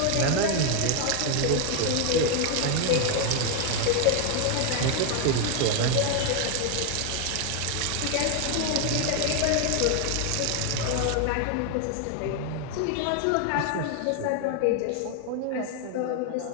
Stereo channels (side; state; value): both; different; correlation 0.01